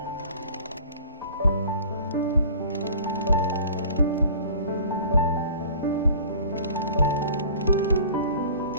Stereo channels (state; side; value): inverted; both; correlation -0.46